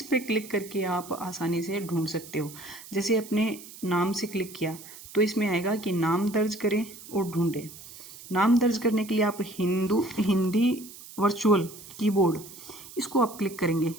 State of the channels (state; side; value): noise; right; hiss, 16 dB below the sound